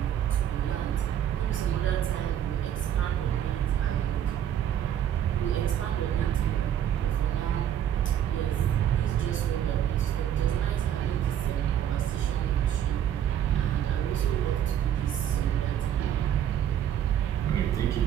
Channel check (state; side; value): quieter; left; 10.2 dB